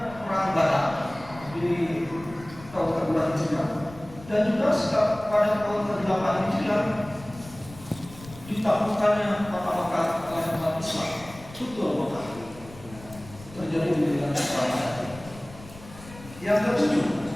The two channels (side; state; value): left; noise; rumble, 18 dB below the sound